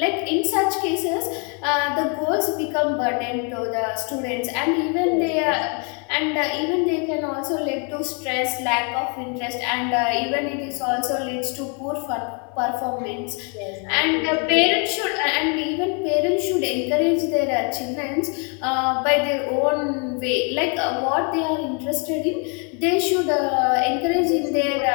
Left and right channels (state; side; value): quieter; right; 36.6 dB